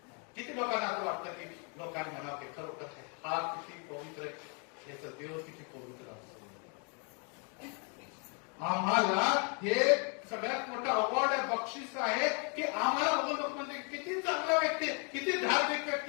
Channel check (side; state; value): right; quieter; 36.9 dB